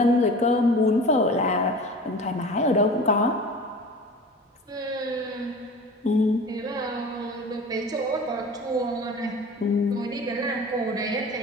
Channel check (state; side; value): normal; both; correlation 0.39